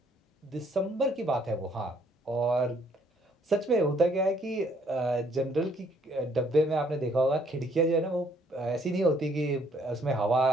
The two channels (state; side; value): normal; both; correlation 0.65